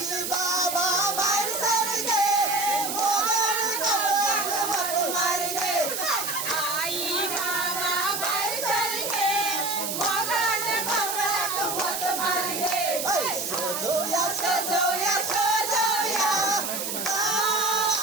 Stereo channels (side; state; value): right; noise; hiss, 3 dB below the sound